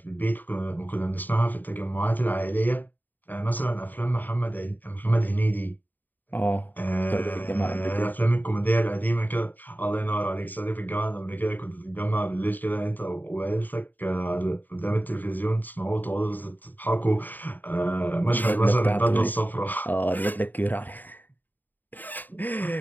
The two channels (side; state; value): right; late; 0.087 ms